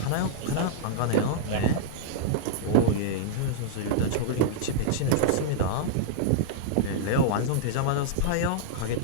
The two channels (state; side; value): different; both; correlation -0.02